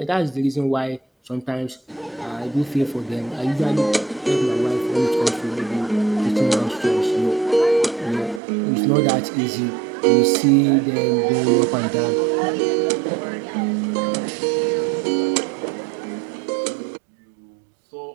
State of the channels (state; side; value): drops out; left; at 8.4 s